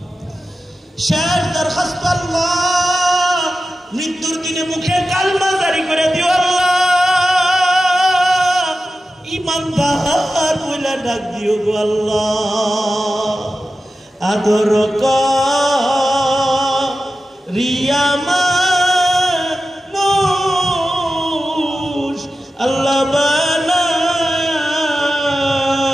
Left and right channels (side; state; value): both; normal; correlation 0.93